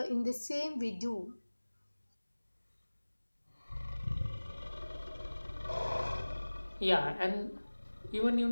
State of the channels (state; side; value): inverted; both; correlation -1.00